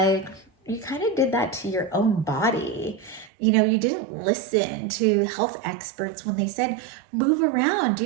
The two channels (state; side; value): drops out; left; at 3.3 s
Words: you kind of did that to your own body. You didn't listen to health experts when they said, move around,